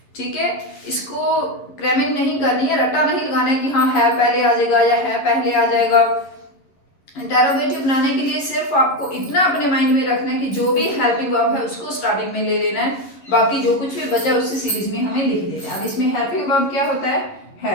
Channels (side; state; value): right; late; 11 ms